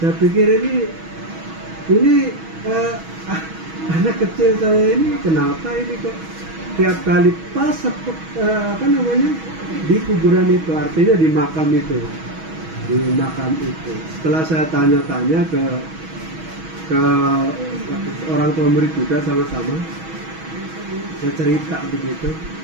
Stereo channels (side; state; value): left; late; 6.2 ms